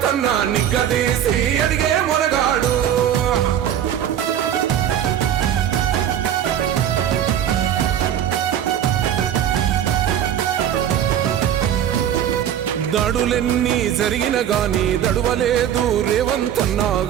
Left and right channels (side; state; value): left; quieter; 10.1 dB